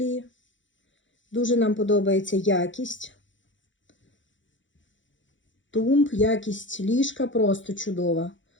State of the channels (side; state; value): right; late; 0.55 ms